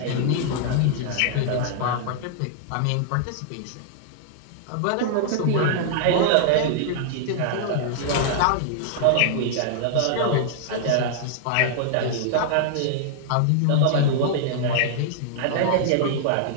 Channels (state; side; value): different; both; correlation -0.01